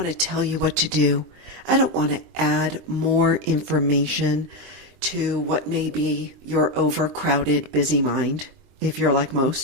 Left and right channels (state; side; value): late; left; 23 ms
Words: to tell you what to do. I don't want to add more information to what may be your overcrowded, busy mind, if you're like